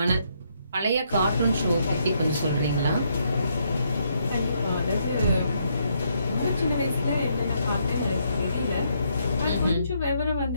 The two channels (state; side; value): inverted; both; correlation -0.74